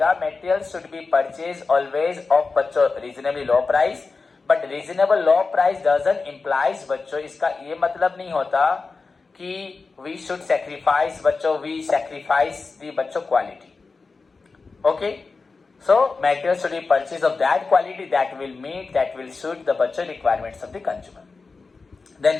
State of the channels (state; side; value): quieter; right; 4.2 dB